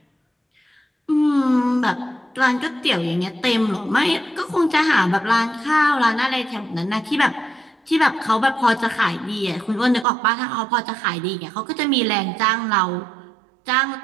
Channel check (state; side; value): drops out; left; at 10.1 s